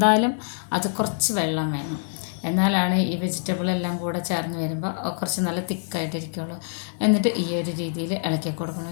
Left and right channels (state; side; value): silent; right; digital silence